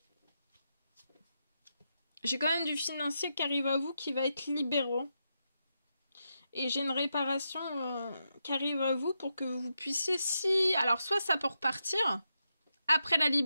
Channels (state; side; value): inverted; both; correlation -0.85